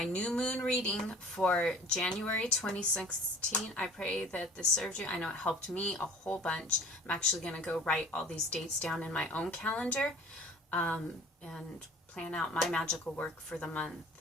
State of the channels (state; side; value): normal; both; correlation 0.46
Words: new moon reading for January 2016. I pray that this served you. I know it helped me a whole bunch. I'm actually going to go write all these dates down in my own calendar and plan out my magical work for the month.